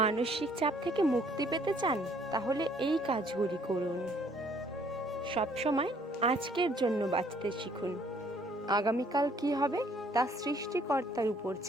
চাপ থেকে মুক্তি পেতে চান, তাহলে এই কাজগুলি করুন। সবসময় আজকের জন্য বাঁচতে শিখুন। আগামীকাল কি হবে তা সৃষ্টিকর্তার উপর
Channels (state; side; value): normal; both; correlation 0.62